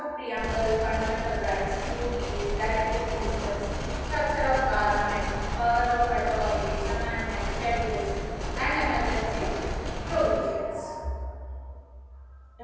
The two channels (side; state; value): both; identical; correlation 1.00